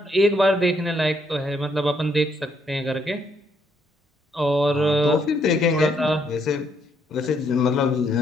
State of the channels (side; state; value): both; normal; correlation 0.72